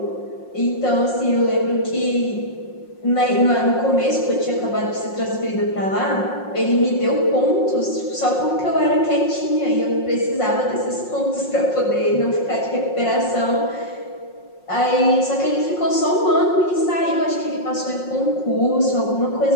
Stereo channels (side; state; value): right; late; 5.6 ms